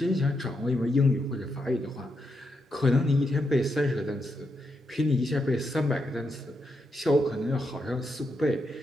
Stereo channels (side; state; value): both; normal; correlation 0.82